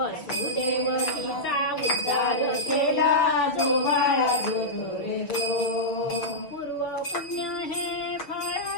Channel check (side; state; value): right; late; 6.3 ms